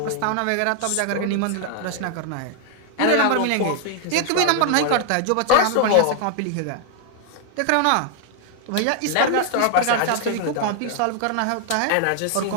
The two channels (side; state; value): both; different; correlation 0.00